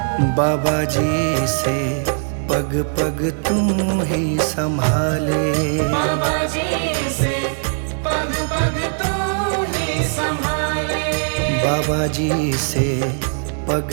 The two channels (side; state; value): left; silent; digital silence